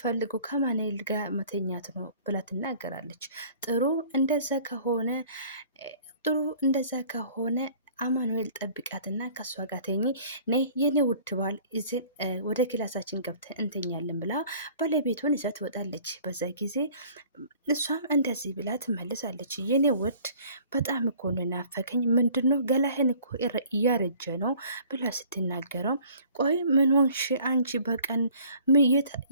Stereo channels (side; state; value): both; inverted; correlation -0.52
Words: ከአማኑኤል ጋር መተኛት ነው ብላ ትናገራለች። ጥሩ እንደዛ ከሆነ አማኑኤል ጠብቃትና ከእሷ ጋር ተኝ ነ የኔ ውድ ባል እዚን ወደ ክላሳችን ገብተን እንተኛለን ብላ ባለቤቱን ይዛ ትወጣለች። በዛ ጊዜ እሷም እንደዚህ ብላ ትመልሳለች። የኔ ውድ በጣም እኮ ነው ናፈከኝ፣ ምንድነው ገላህን እኮ እያረጀ ነው ብላ ስትናገረው ቆይ ምን ሆንሽ አንቺ በቀን